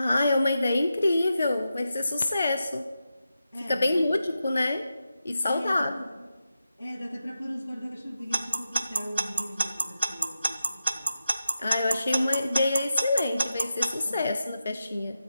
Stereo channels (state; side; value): inverted; both; correlation -0.89